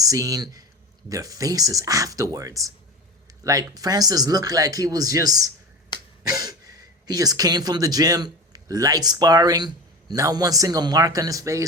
their faces afterwards. Like, Francis looked like he was just, he just came from the gym, light sparring, not one single mark on his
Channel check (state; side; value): normal; both; correlation 0.27